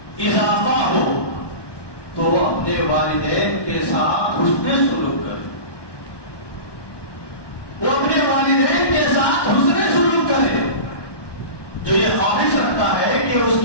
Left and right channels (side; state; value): right; late; 1.2 ms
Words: اضافہ ہو تو اپنے والدین کے ساتھ حسن سلوک کرے. وہ اپنے والدین کے ساتھ حسن سلوک کرے. جو یہ خواہش رکھتا ہے کہ اس